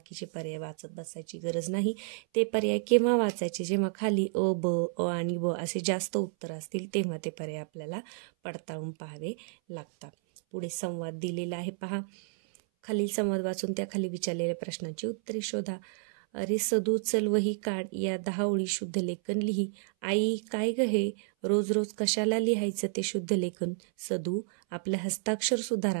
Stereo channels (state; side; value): silent; left; 57 dB below the other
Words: पर्याय वाचत बसायची गरज नाही. ते पर्याय केव्हा वाचायचे? जेव्हा खाली अ, ब, आणि ब असे जास्त उत्तर असतील तेव्हा ते पर्याय आपल्याला पडताळून पाहावे लागतात. पुढे संवाद दिलेला आहे. पहा, खालील संवाद वाचून त्या खाली विचारलेल्या प्रश्नांची उत्तरे शोधा. अरे सदू चल वही काढ, या 10 ओळी शुद्ध लेखन लिही. आई काय ग हे, रोज रोज कशाला लिहायचं ते शुद्ध लेखन? सदू, आपलं हस्ताक्षर